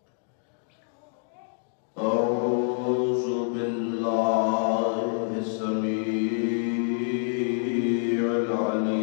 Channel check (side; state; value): right; silent; digital silence